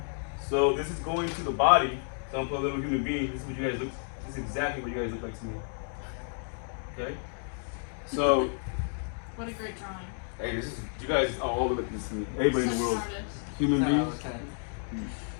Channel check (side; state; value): right; silent; 57 dB below the other